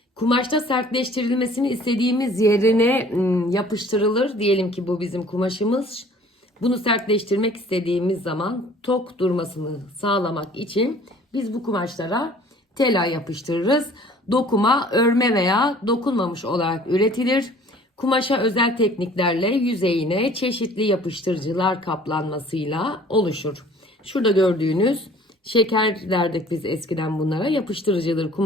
kumaşta sertleştirilmesini istediğimiz yerine yapıştırılır. Diyelim ki bu bizim kumaşımız. Bunu sertleştirmek istediğimiz zaman tok durmasını sağlamak için biz bu kumaşlara tela yapıştırırız. Dokuma, örme veya dokunmamış olarak üretilir. Kumaşa özel tekniklerle yüzeyine çeşitli yapıştırıcılar kaplanmasıyla oluşur. Şurada gördüğünüz şeker derdik biz eskiden bunlara. Yapıştırıcıdır.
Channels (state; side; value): normal; both; correlation 0.52